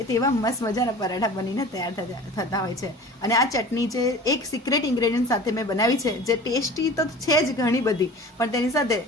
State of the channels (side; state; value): both; normal; correlation 0.39